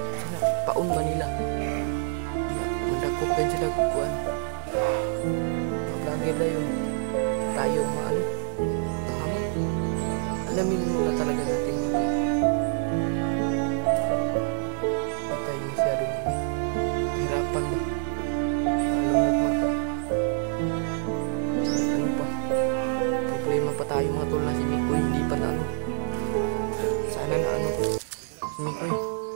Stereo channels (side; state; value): left; silent; digital silence